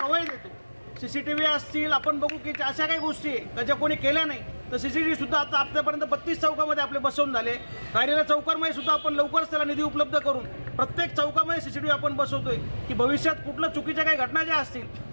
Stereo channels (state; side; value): inverted; both; correlation -1.00